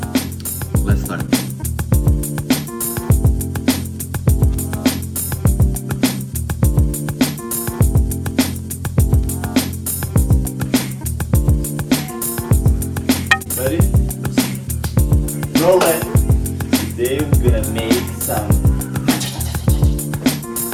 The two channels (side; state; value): both; identical; correlation 1.00